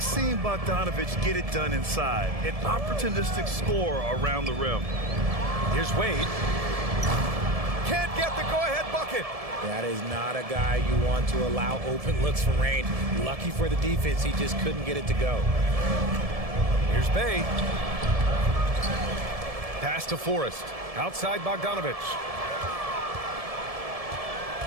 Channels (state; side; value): late; left; 1.7 ms